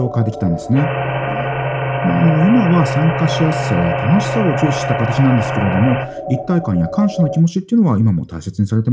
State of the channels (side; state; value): both; identical; correlation 1.00